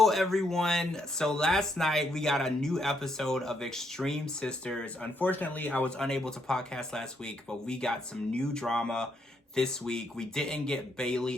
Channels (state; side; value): normal; both; correlation 0.75